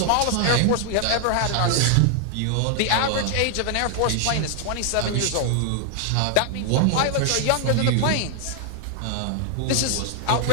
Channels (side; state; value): both; different; correlation 0.00